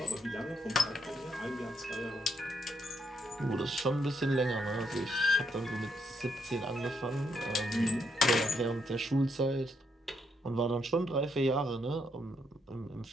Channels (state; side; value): normal; both; correlation 0.76